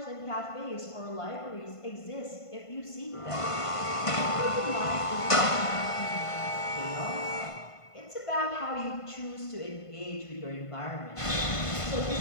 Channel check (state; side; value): late; right; 1.5 ms